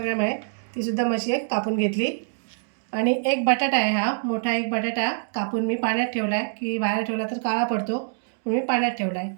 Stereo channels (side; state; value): left; silent; digital silence